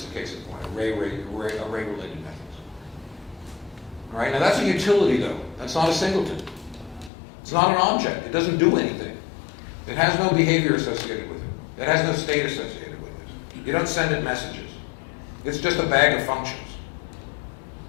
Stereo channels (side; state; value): right; drops out; at 7.1 s